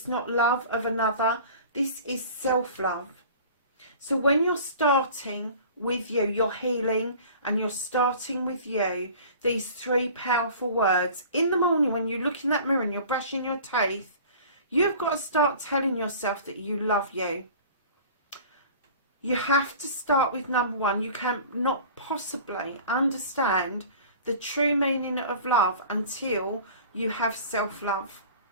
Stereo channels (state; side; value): inverted; both; correlation -0.43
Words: not love of another, this is self-love. So when you're starting with you, you're healing, and you're starting with you, these 3 powerful words, in the morning when you look in that mirror and you're brushing your teeth, you've got to start telling yourself that you love you. You have to start with number 1. You can not possibly understand the true meaning of love until you have self-love.